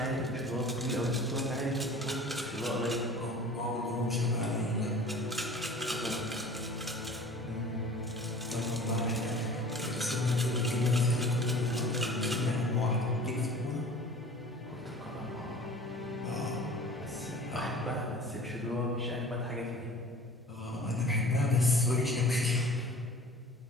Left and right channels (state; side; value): normal; both; correlation 0.43